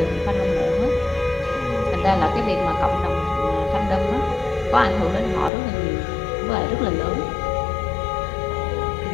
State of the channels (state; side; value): drops out; right; at 5.5 s